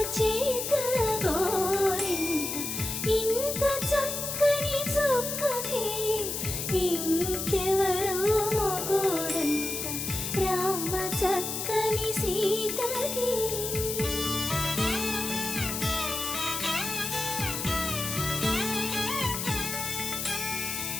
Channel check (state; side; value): noise; left; hiss, 3 dB below the sound